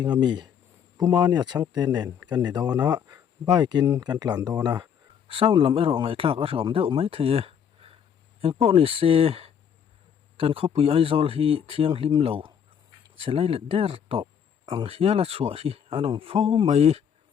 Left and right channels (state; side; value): quieter; right; 8.0 dB